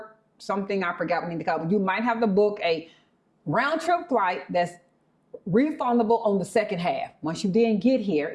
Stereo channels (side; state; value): both; identical; correlation 1.00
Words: something. I forgot what we need to call it. You might have to book a round trip flight that's refundable on the second half. Once you then get here,